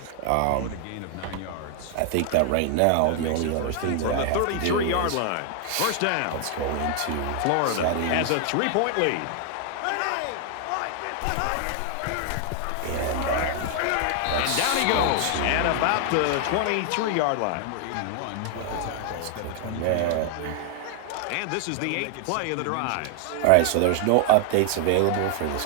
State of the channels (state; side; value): different; both; correlation 0.00